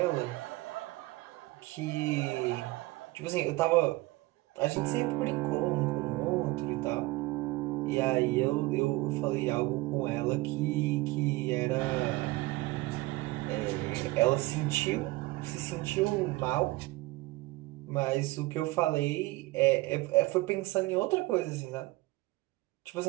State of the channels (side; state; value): left; quieter; 20.6 dB